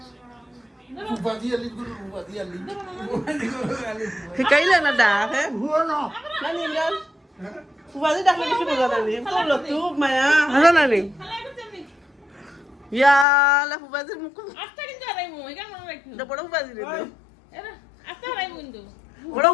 শিকাইলে না ডাক হ্যাঁ ফুবাজি ডাকলে কিছু বোঝা নানি করলো তু মায়া হাসা নানি ইয়ালা ফুবাজির মুখ বড় ফুবাজিরে দেও বড়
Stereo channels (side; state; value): right; drops out; at 13.2 s